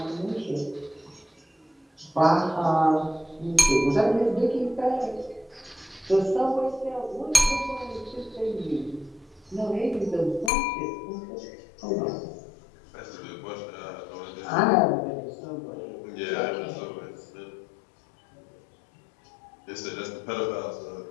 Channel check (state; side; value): drops out; right; at 10.5 s